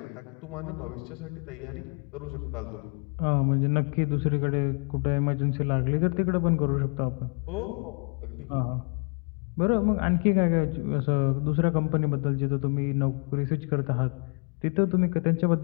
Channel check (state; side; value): quieter; right; 37.4 dB